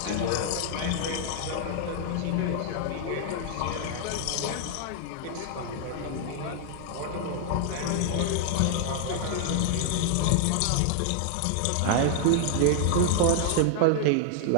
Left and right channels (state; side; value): different; both; correlation -0.01